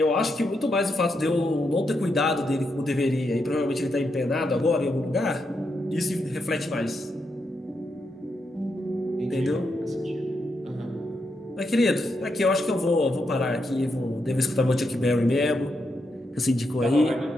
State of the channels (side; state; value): both; normal; correlation 0.82